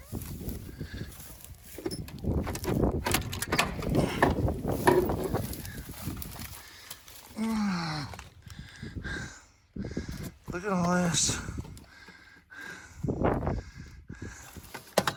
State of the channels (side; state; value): both; identical; correlation 1.00